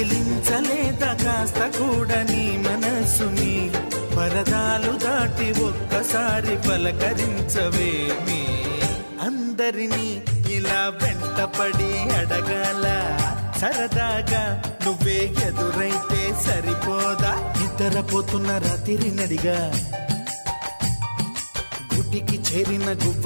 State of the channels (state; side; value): inverted; both; correlation -1.00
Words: కదిలించలేదా కాస్త కూడా నీ మనసుని పరదాలు దాటి ఒక్కసారి పలకరించవేమి అందరినీ ఇలా వెంటపడి అడగాల సరదాగా నువ్వే ఎదురైతే సరిపోదా నిద్రపోతున్న రాత్రి నడిగా గుటికి చేరిన